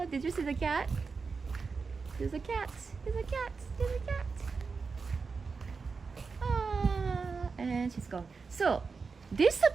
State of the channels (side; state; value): left; quieter; 4.8 dB